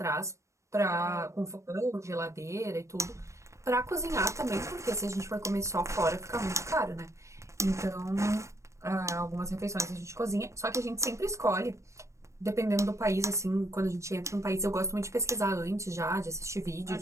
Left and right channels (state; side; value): late; left; 0.15 ms